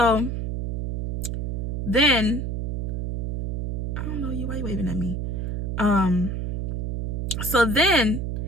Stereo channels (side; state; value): right; noise; hum, 2 dB below the sound